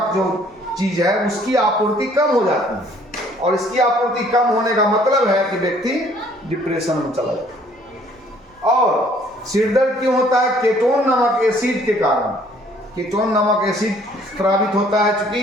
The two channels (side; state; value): both; normal; correlation 0.59